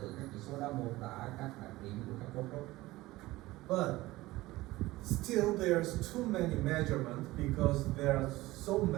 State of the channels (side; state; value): left; quieter; 18.6 dB